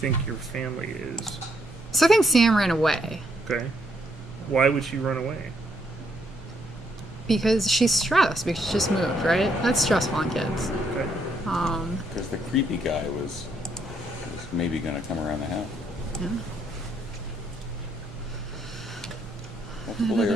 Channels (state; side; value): normal; both; correlation 0.73